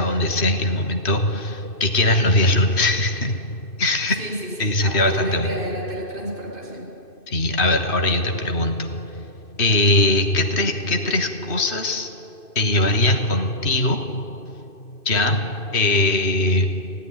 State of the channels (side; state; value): right; late; 2.6 ms